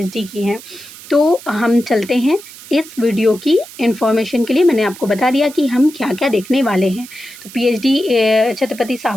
की हैं। तो हम चलते हैं इस वीडियो की इन्फॉर्मेशन के लिए। मैंने आपको बता दिया कि हम क्या-क्या देखने वाले हैं। तो पीएचडी छत्रपति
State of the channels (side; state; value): right; noise; hiss, 17 dB below the sound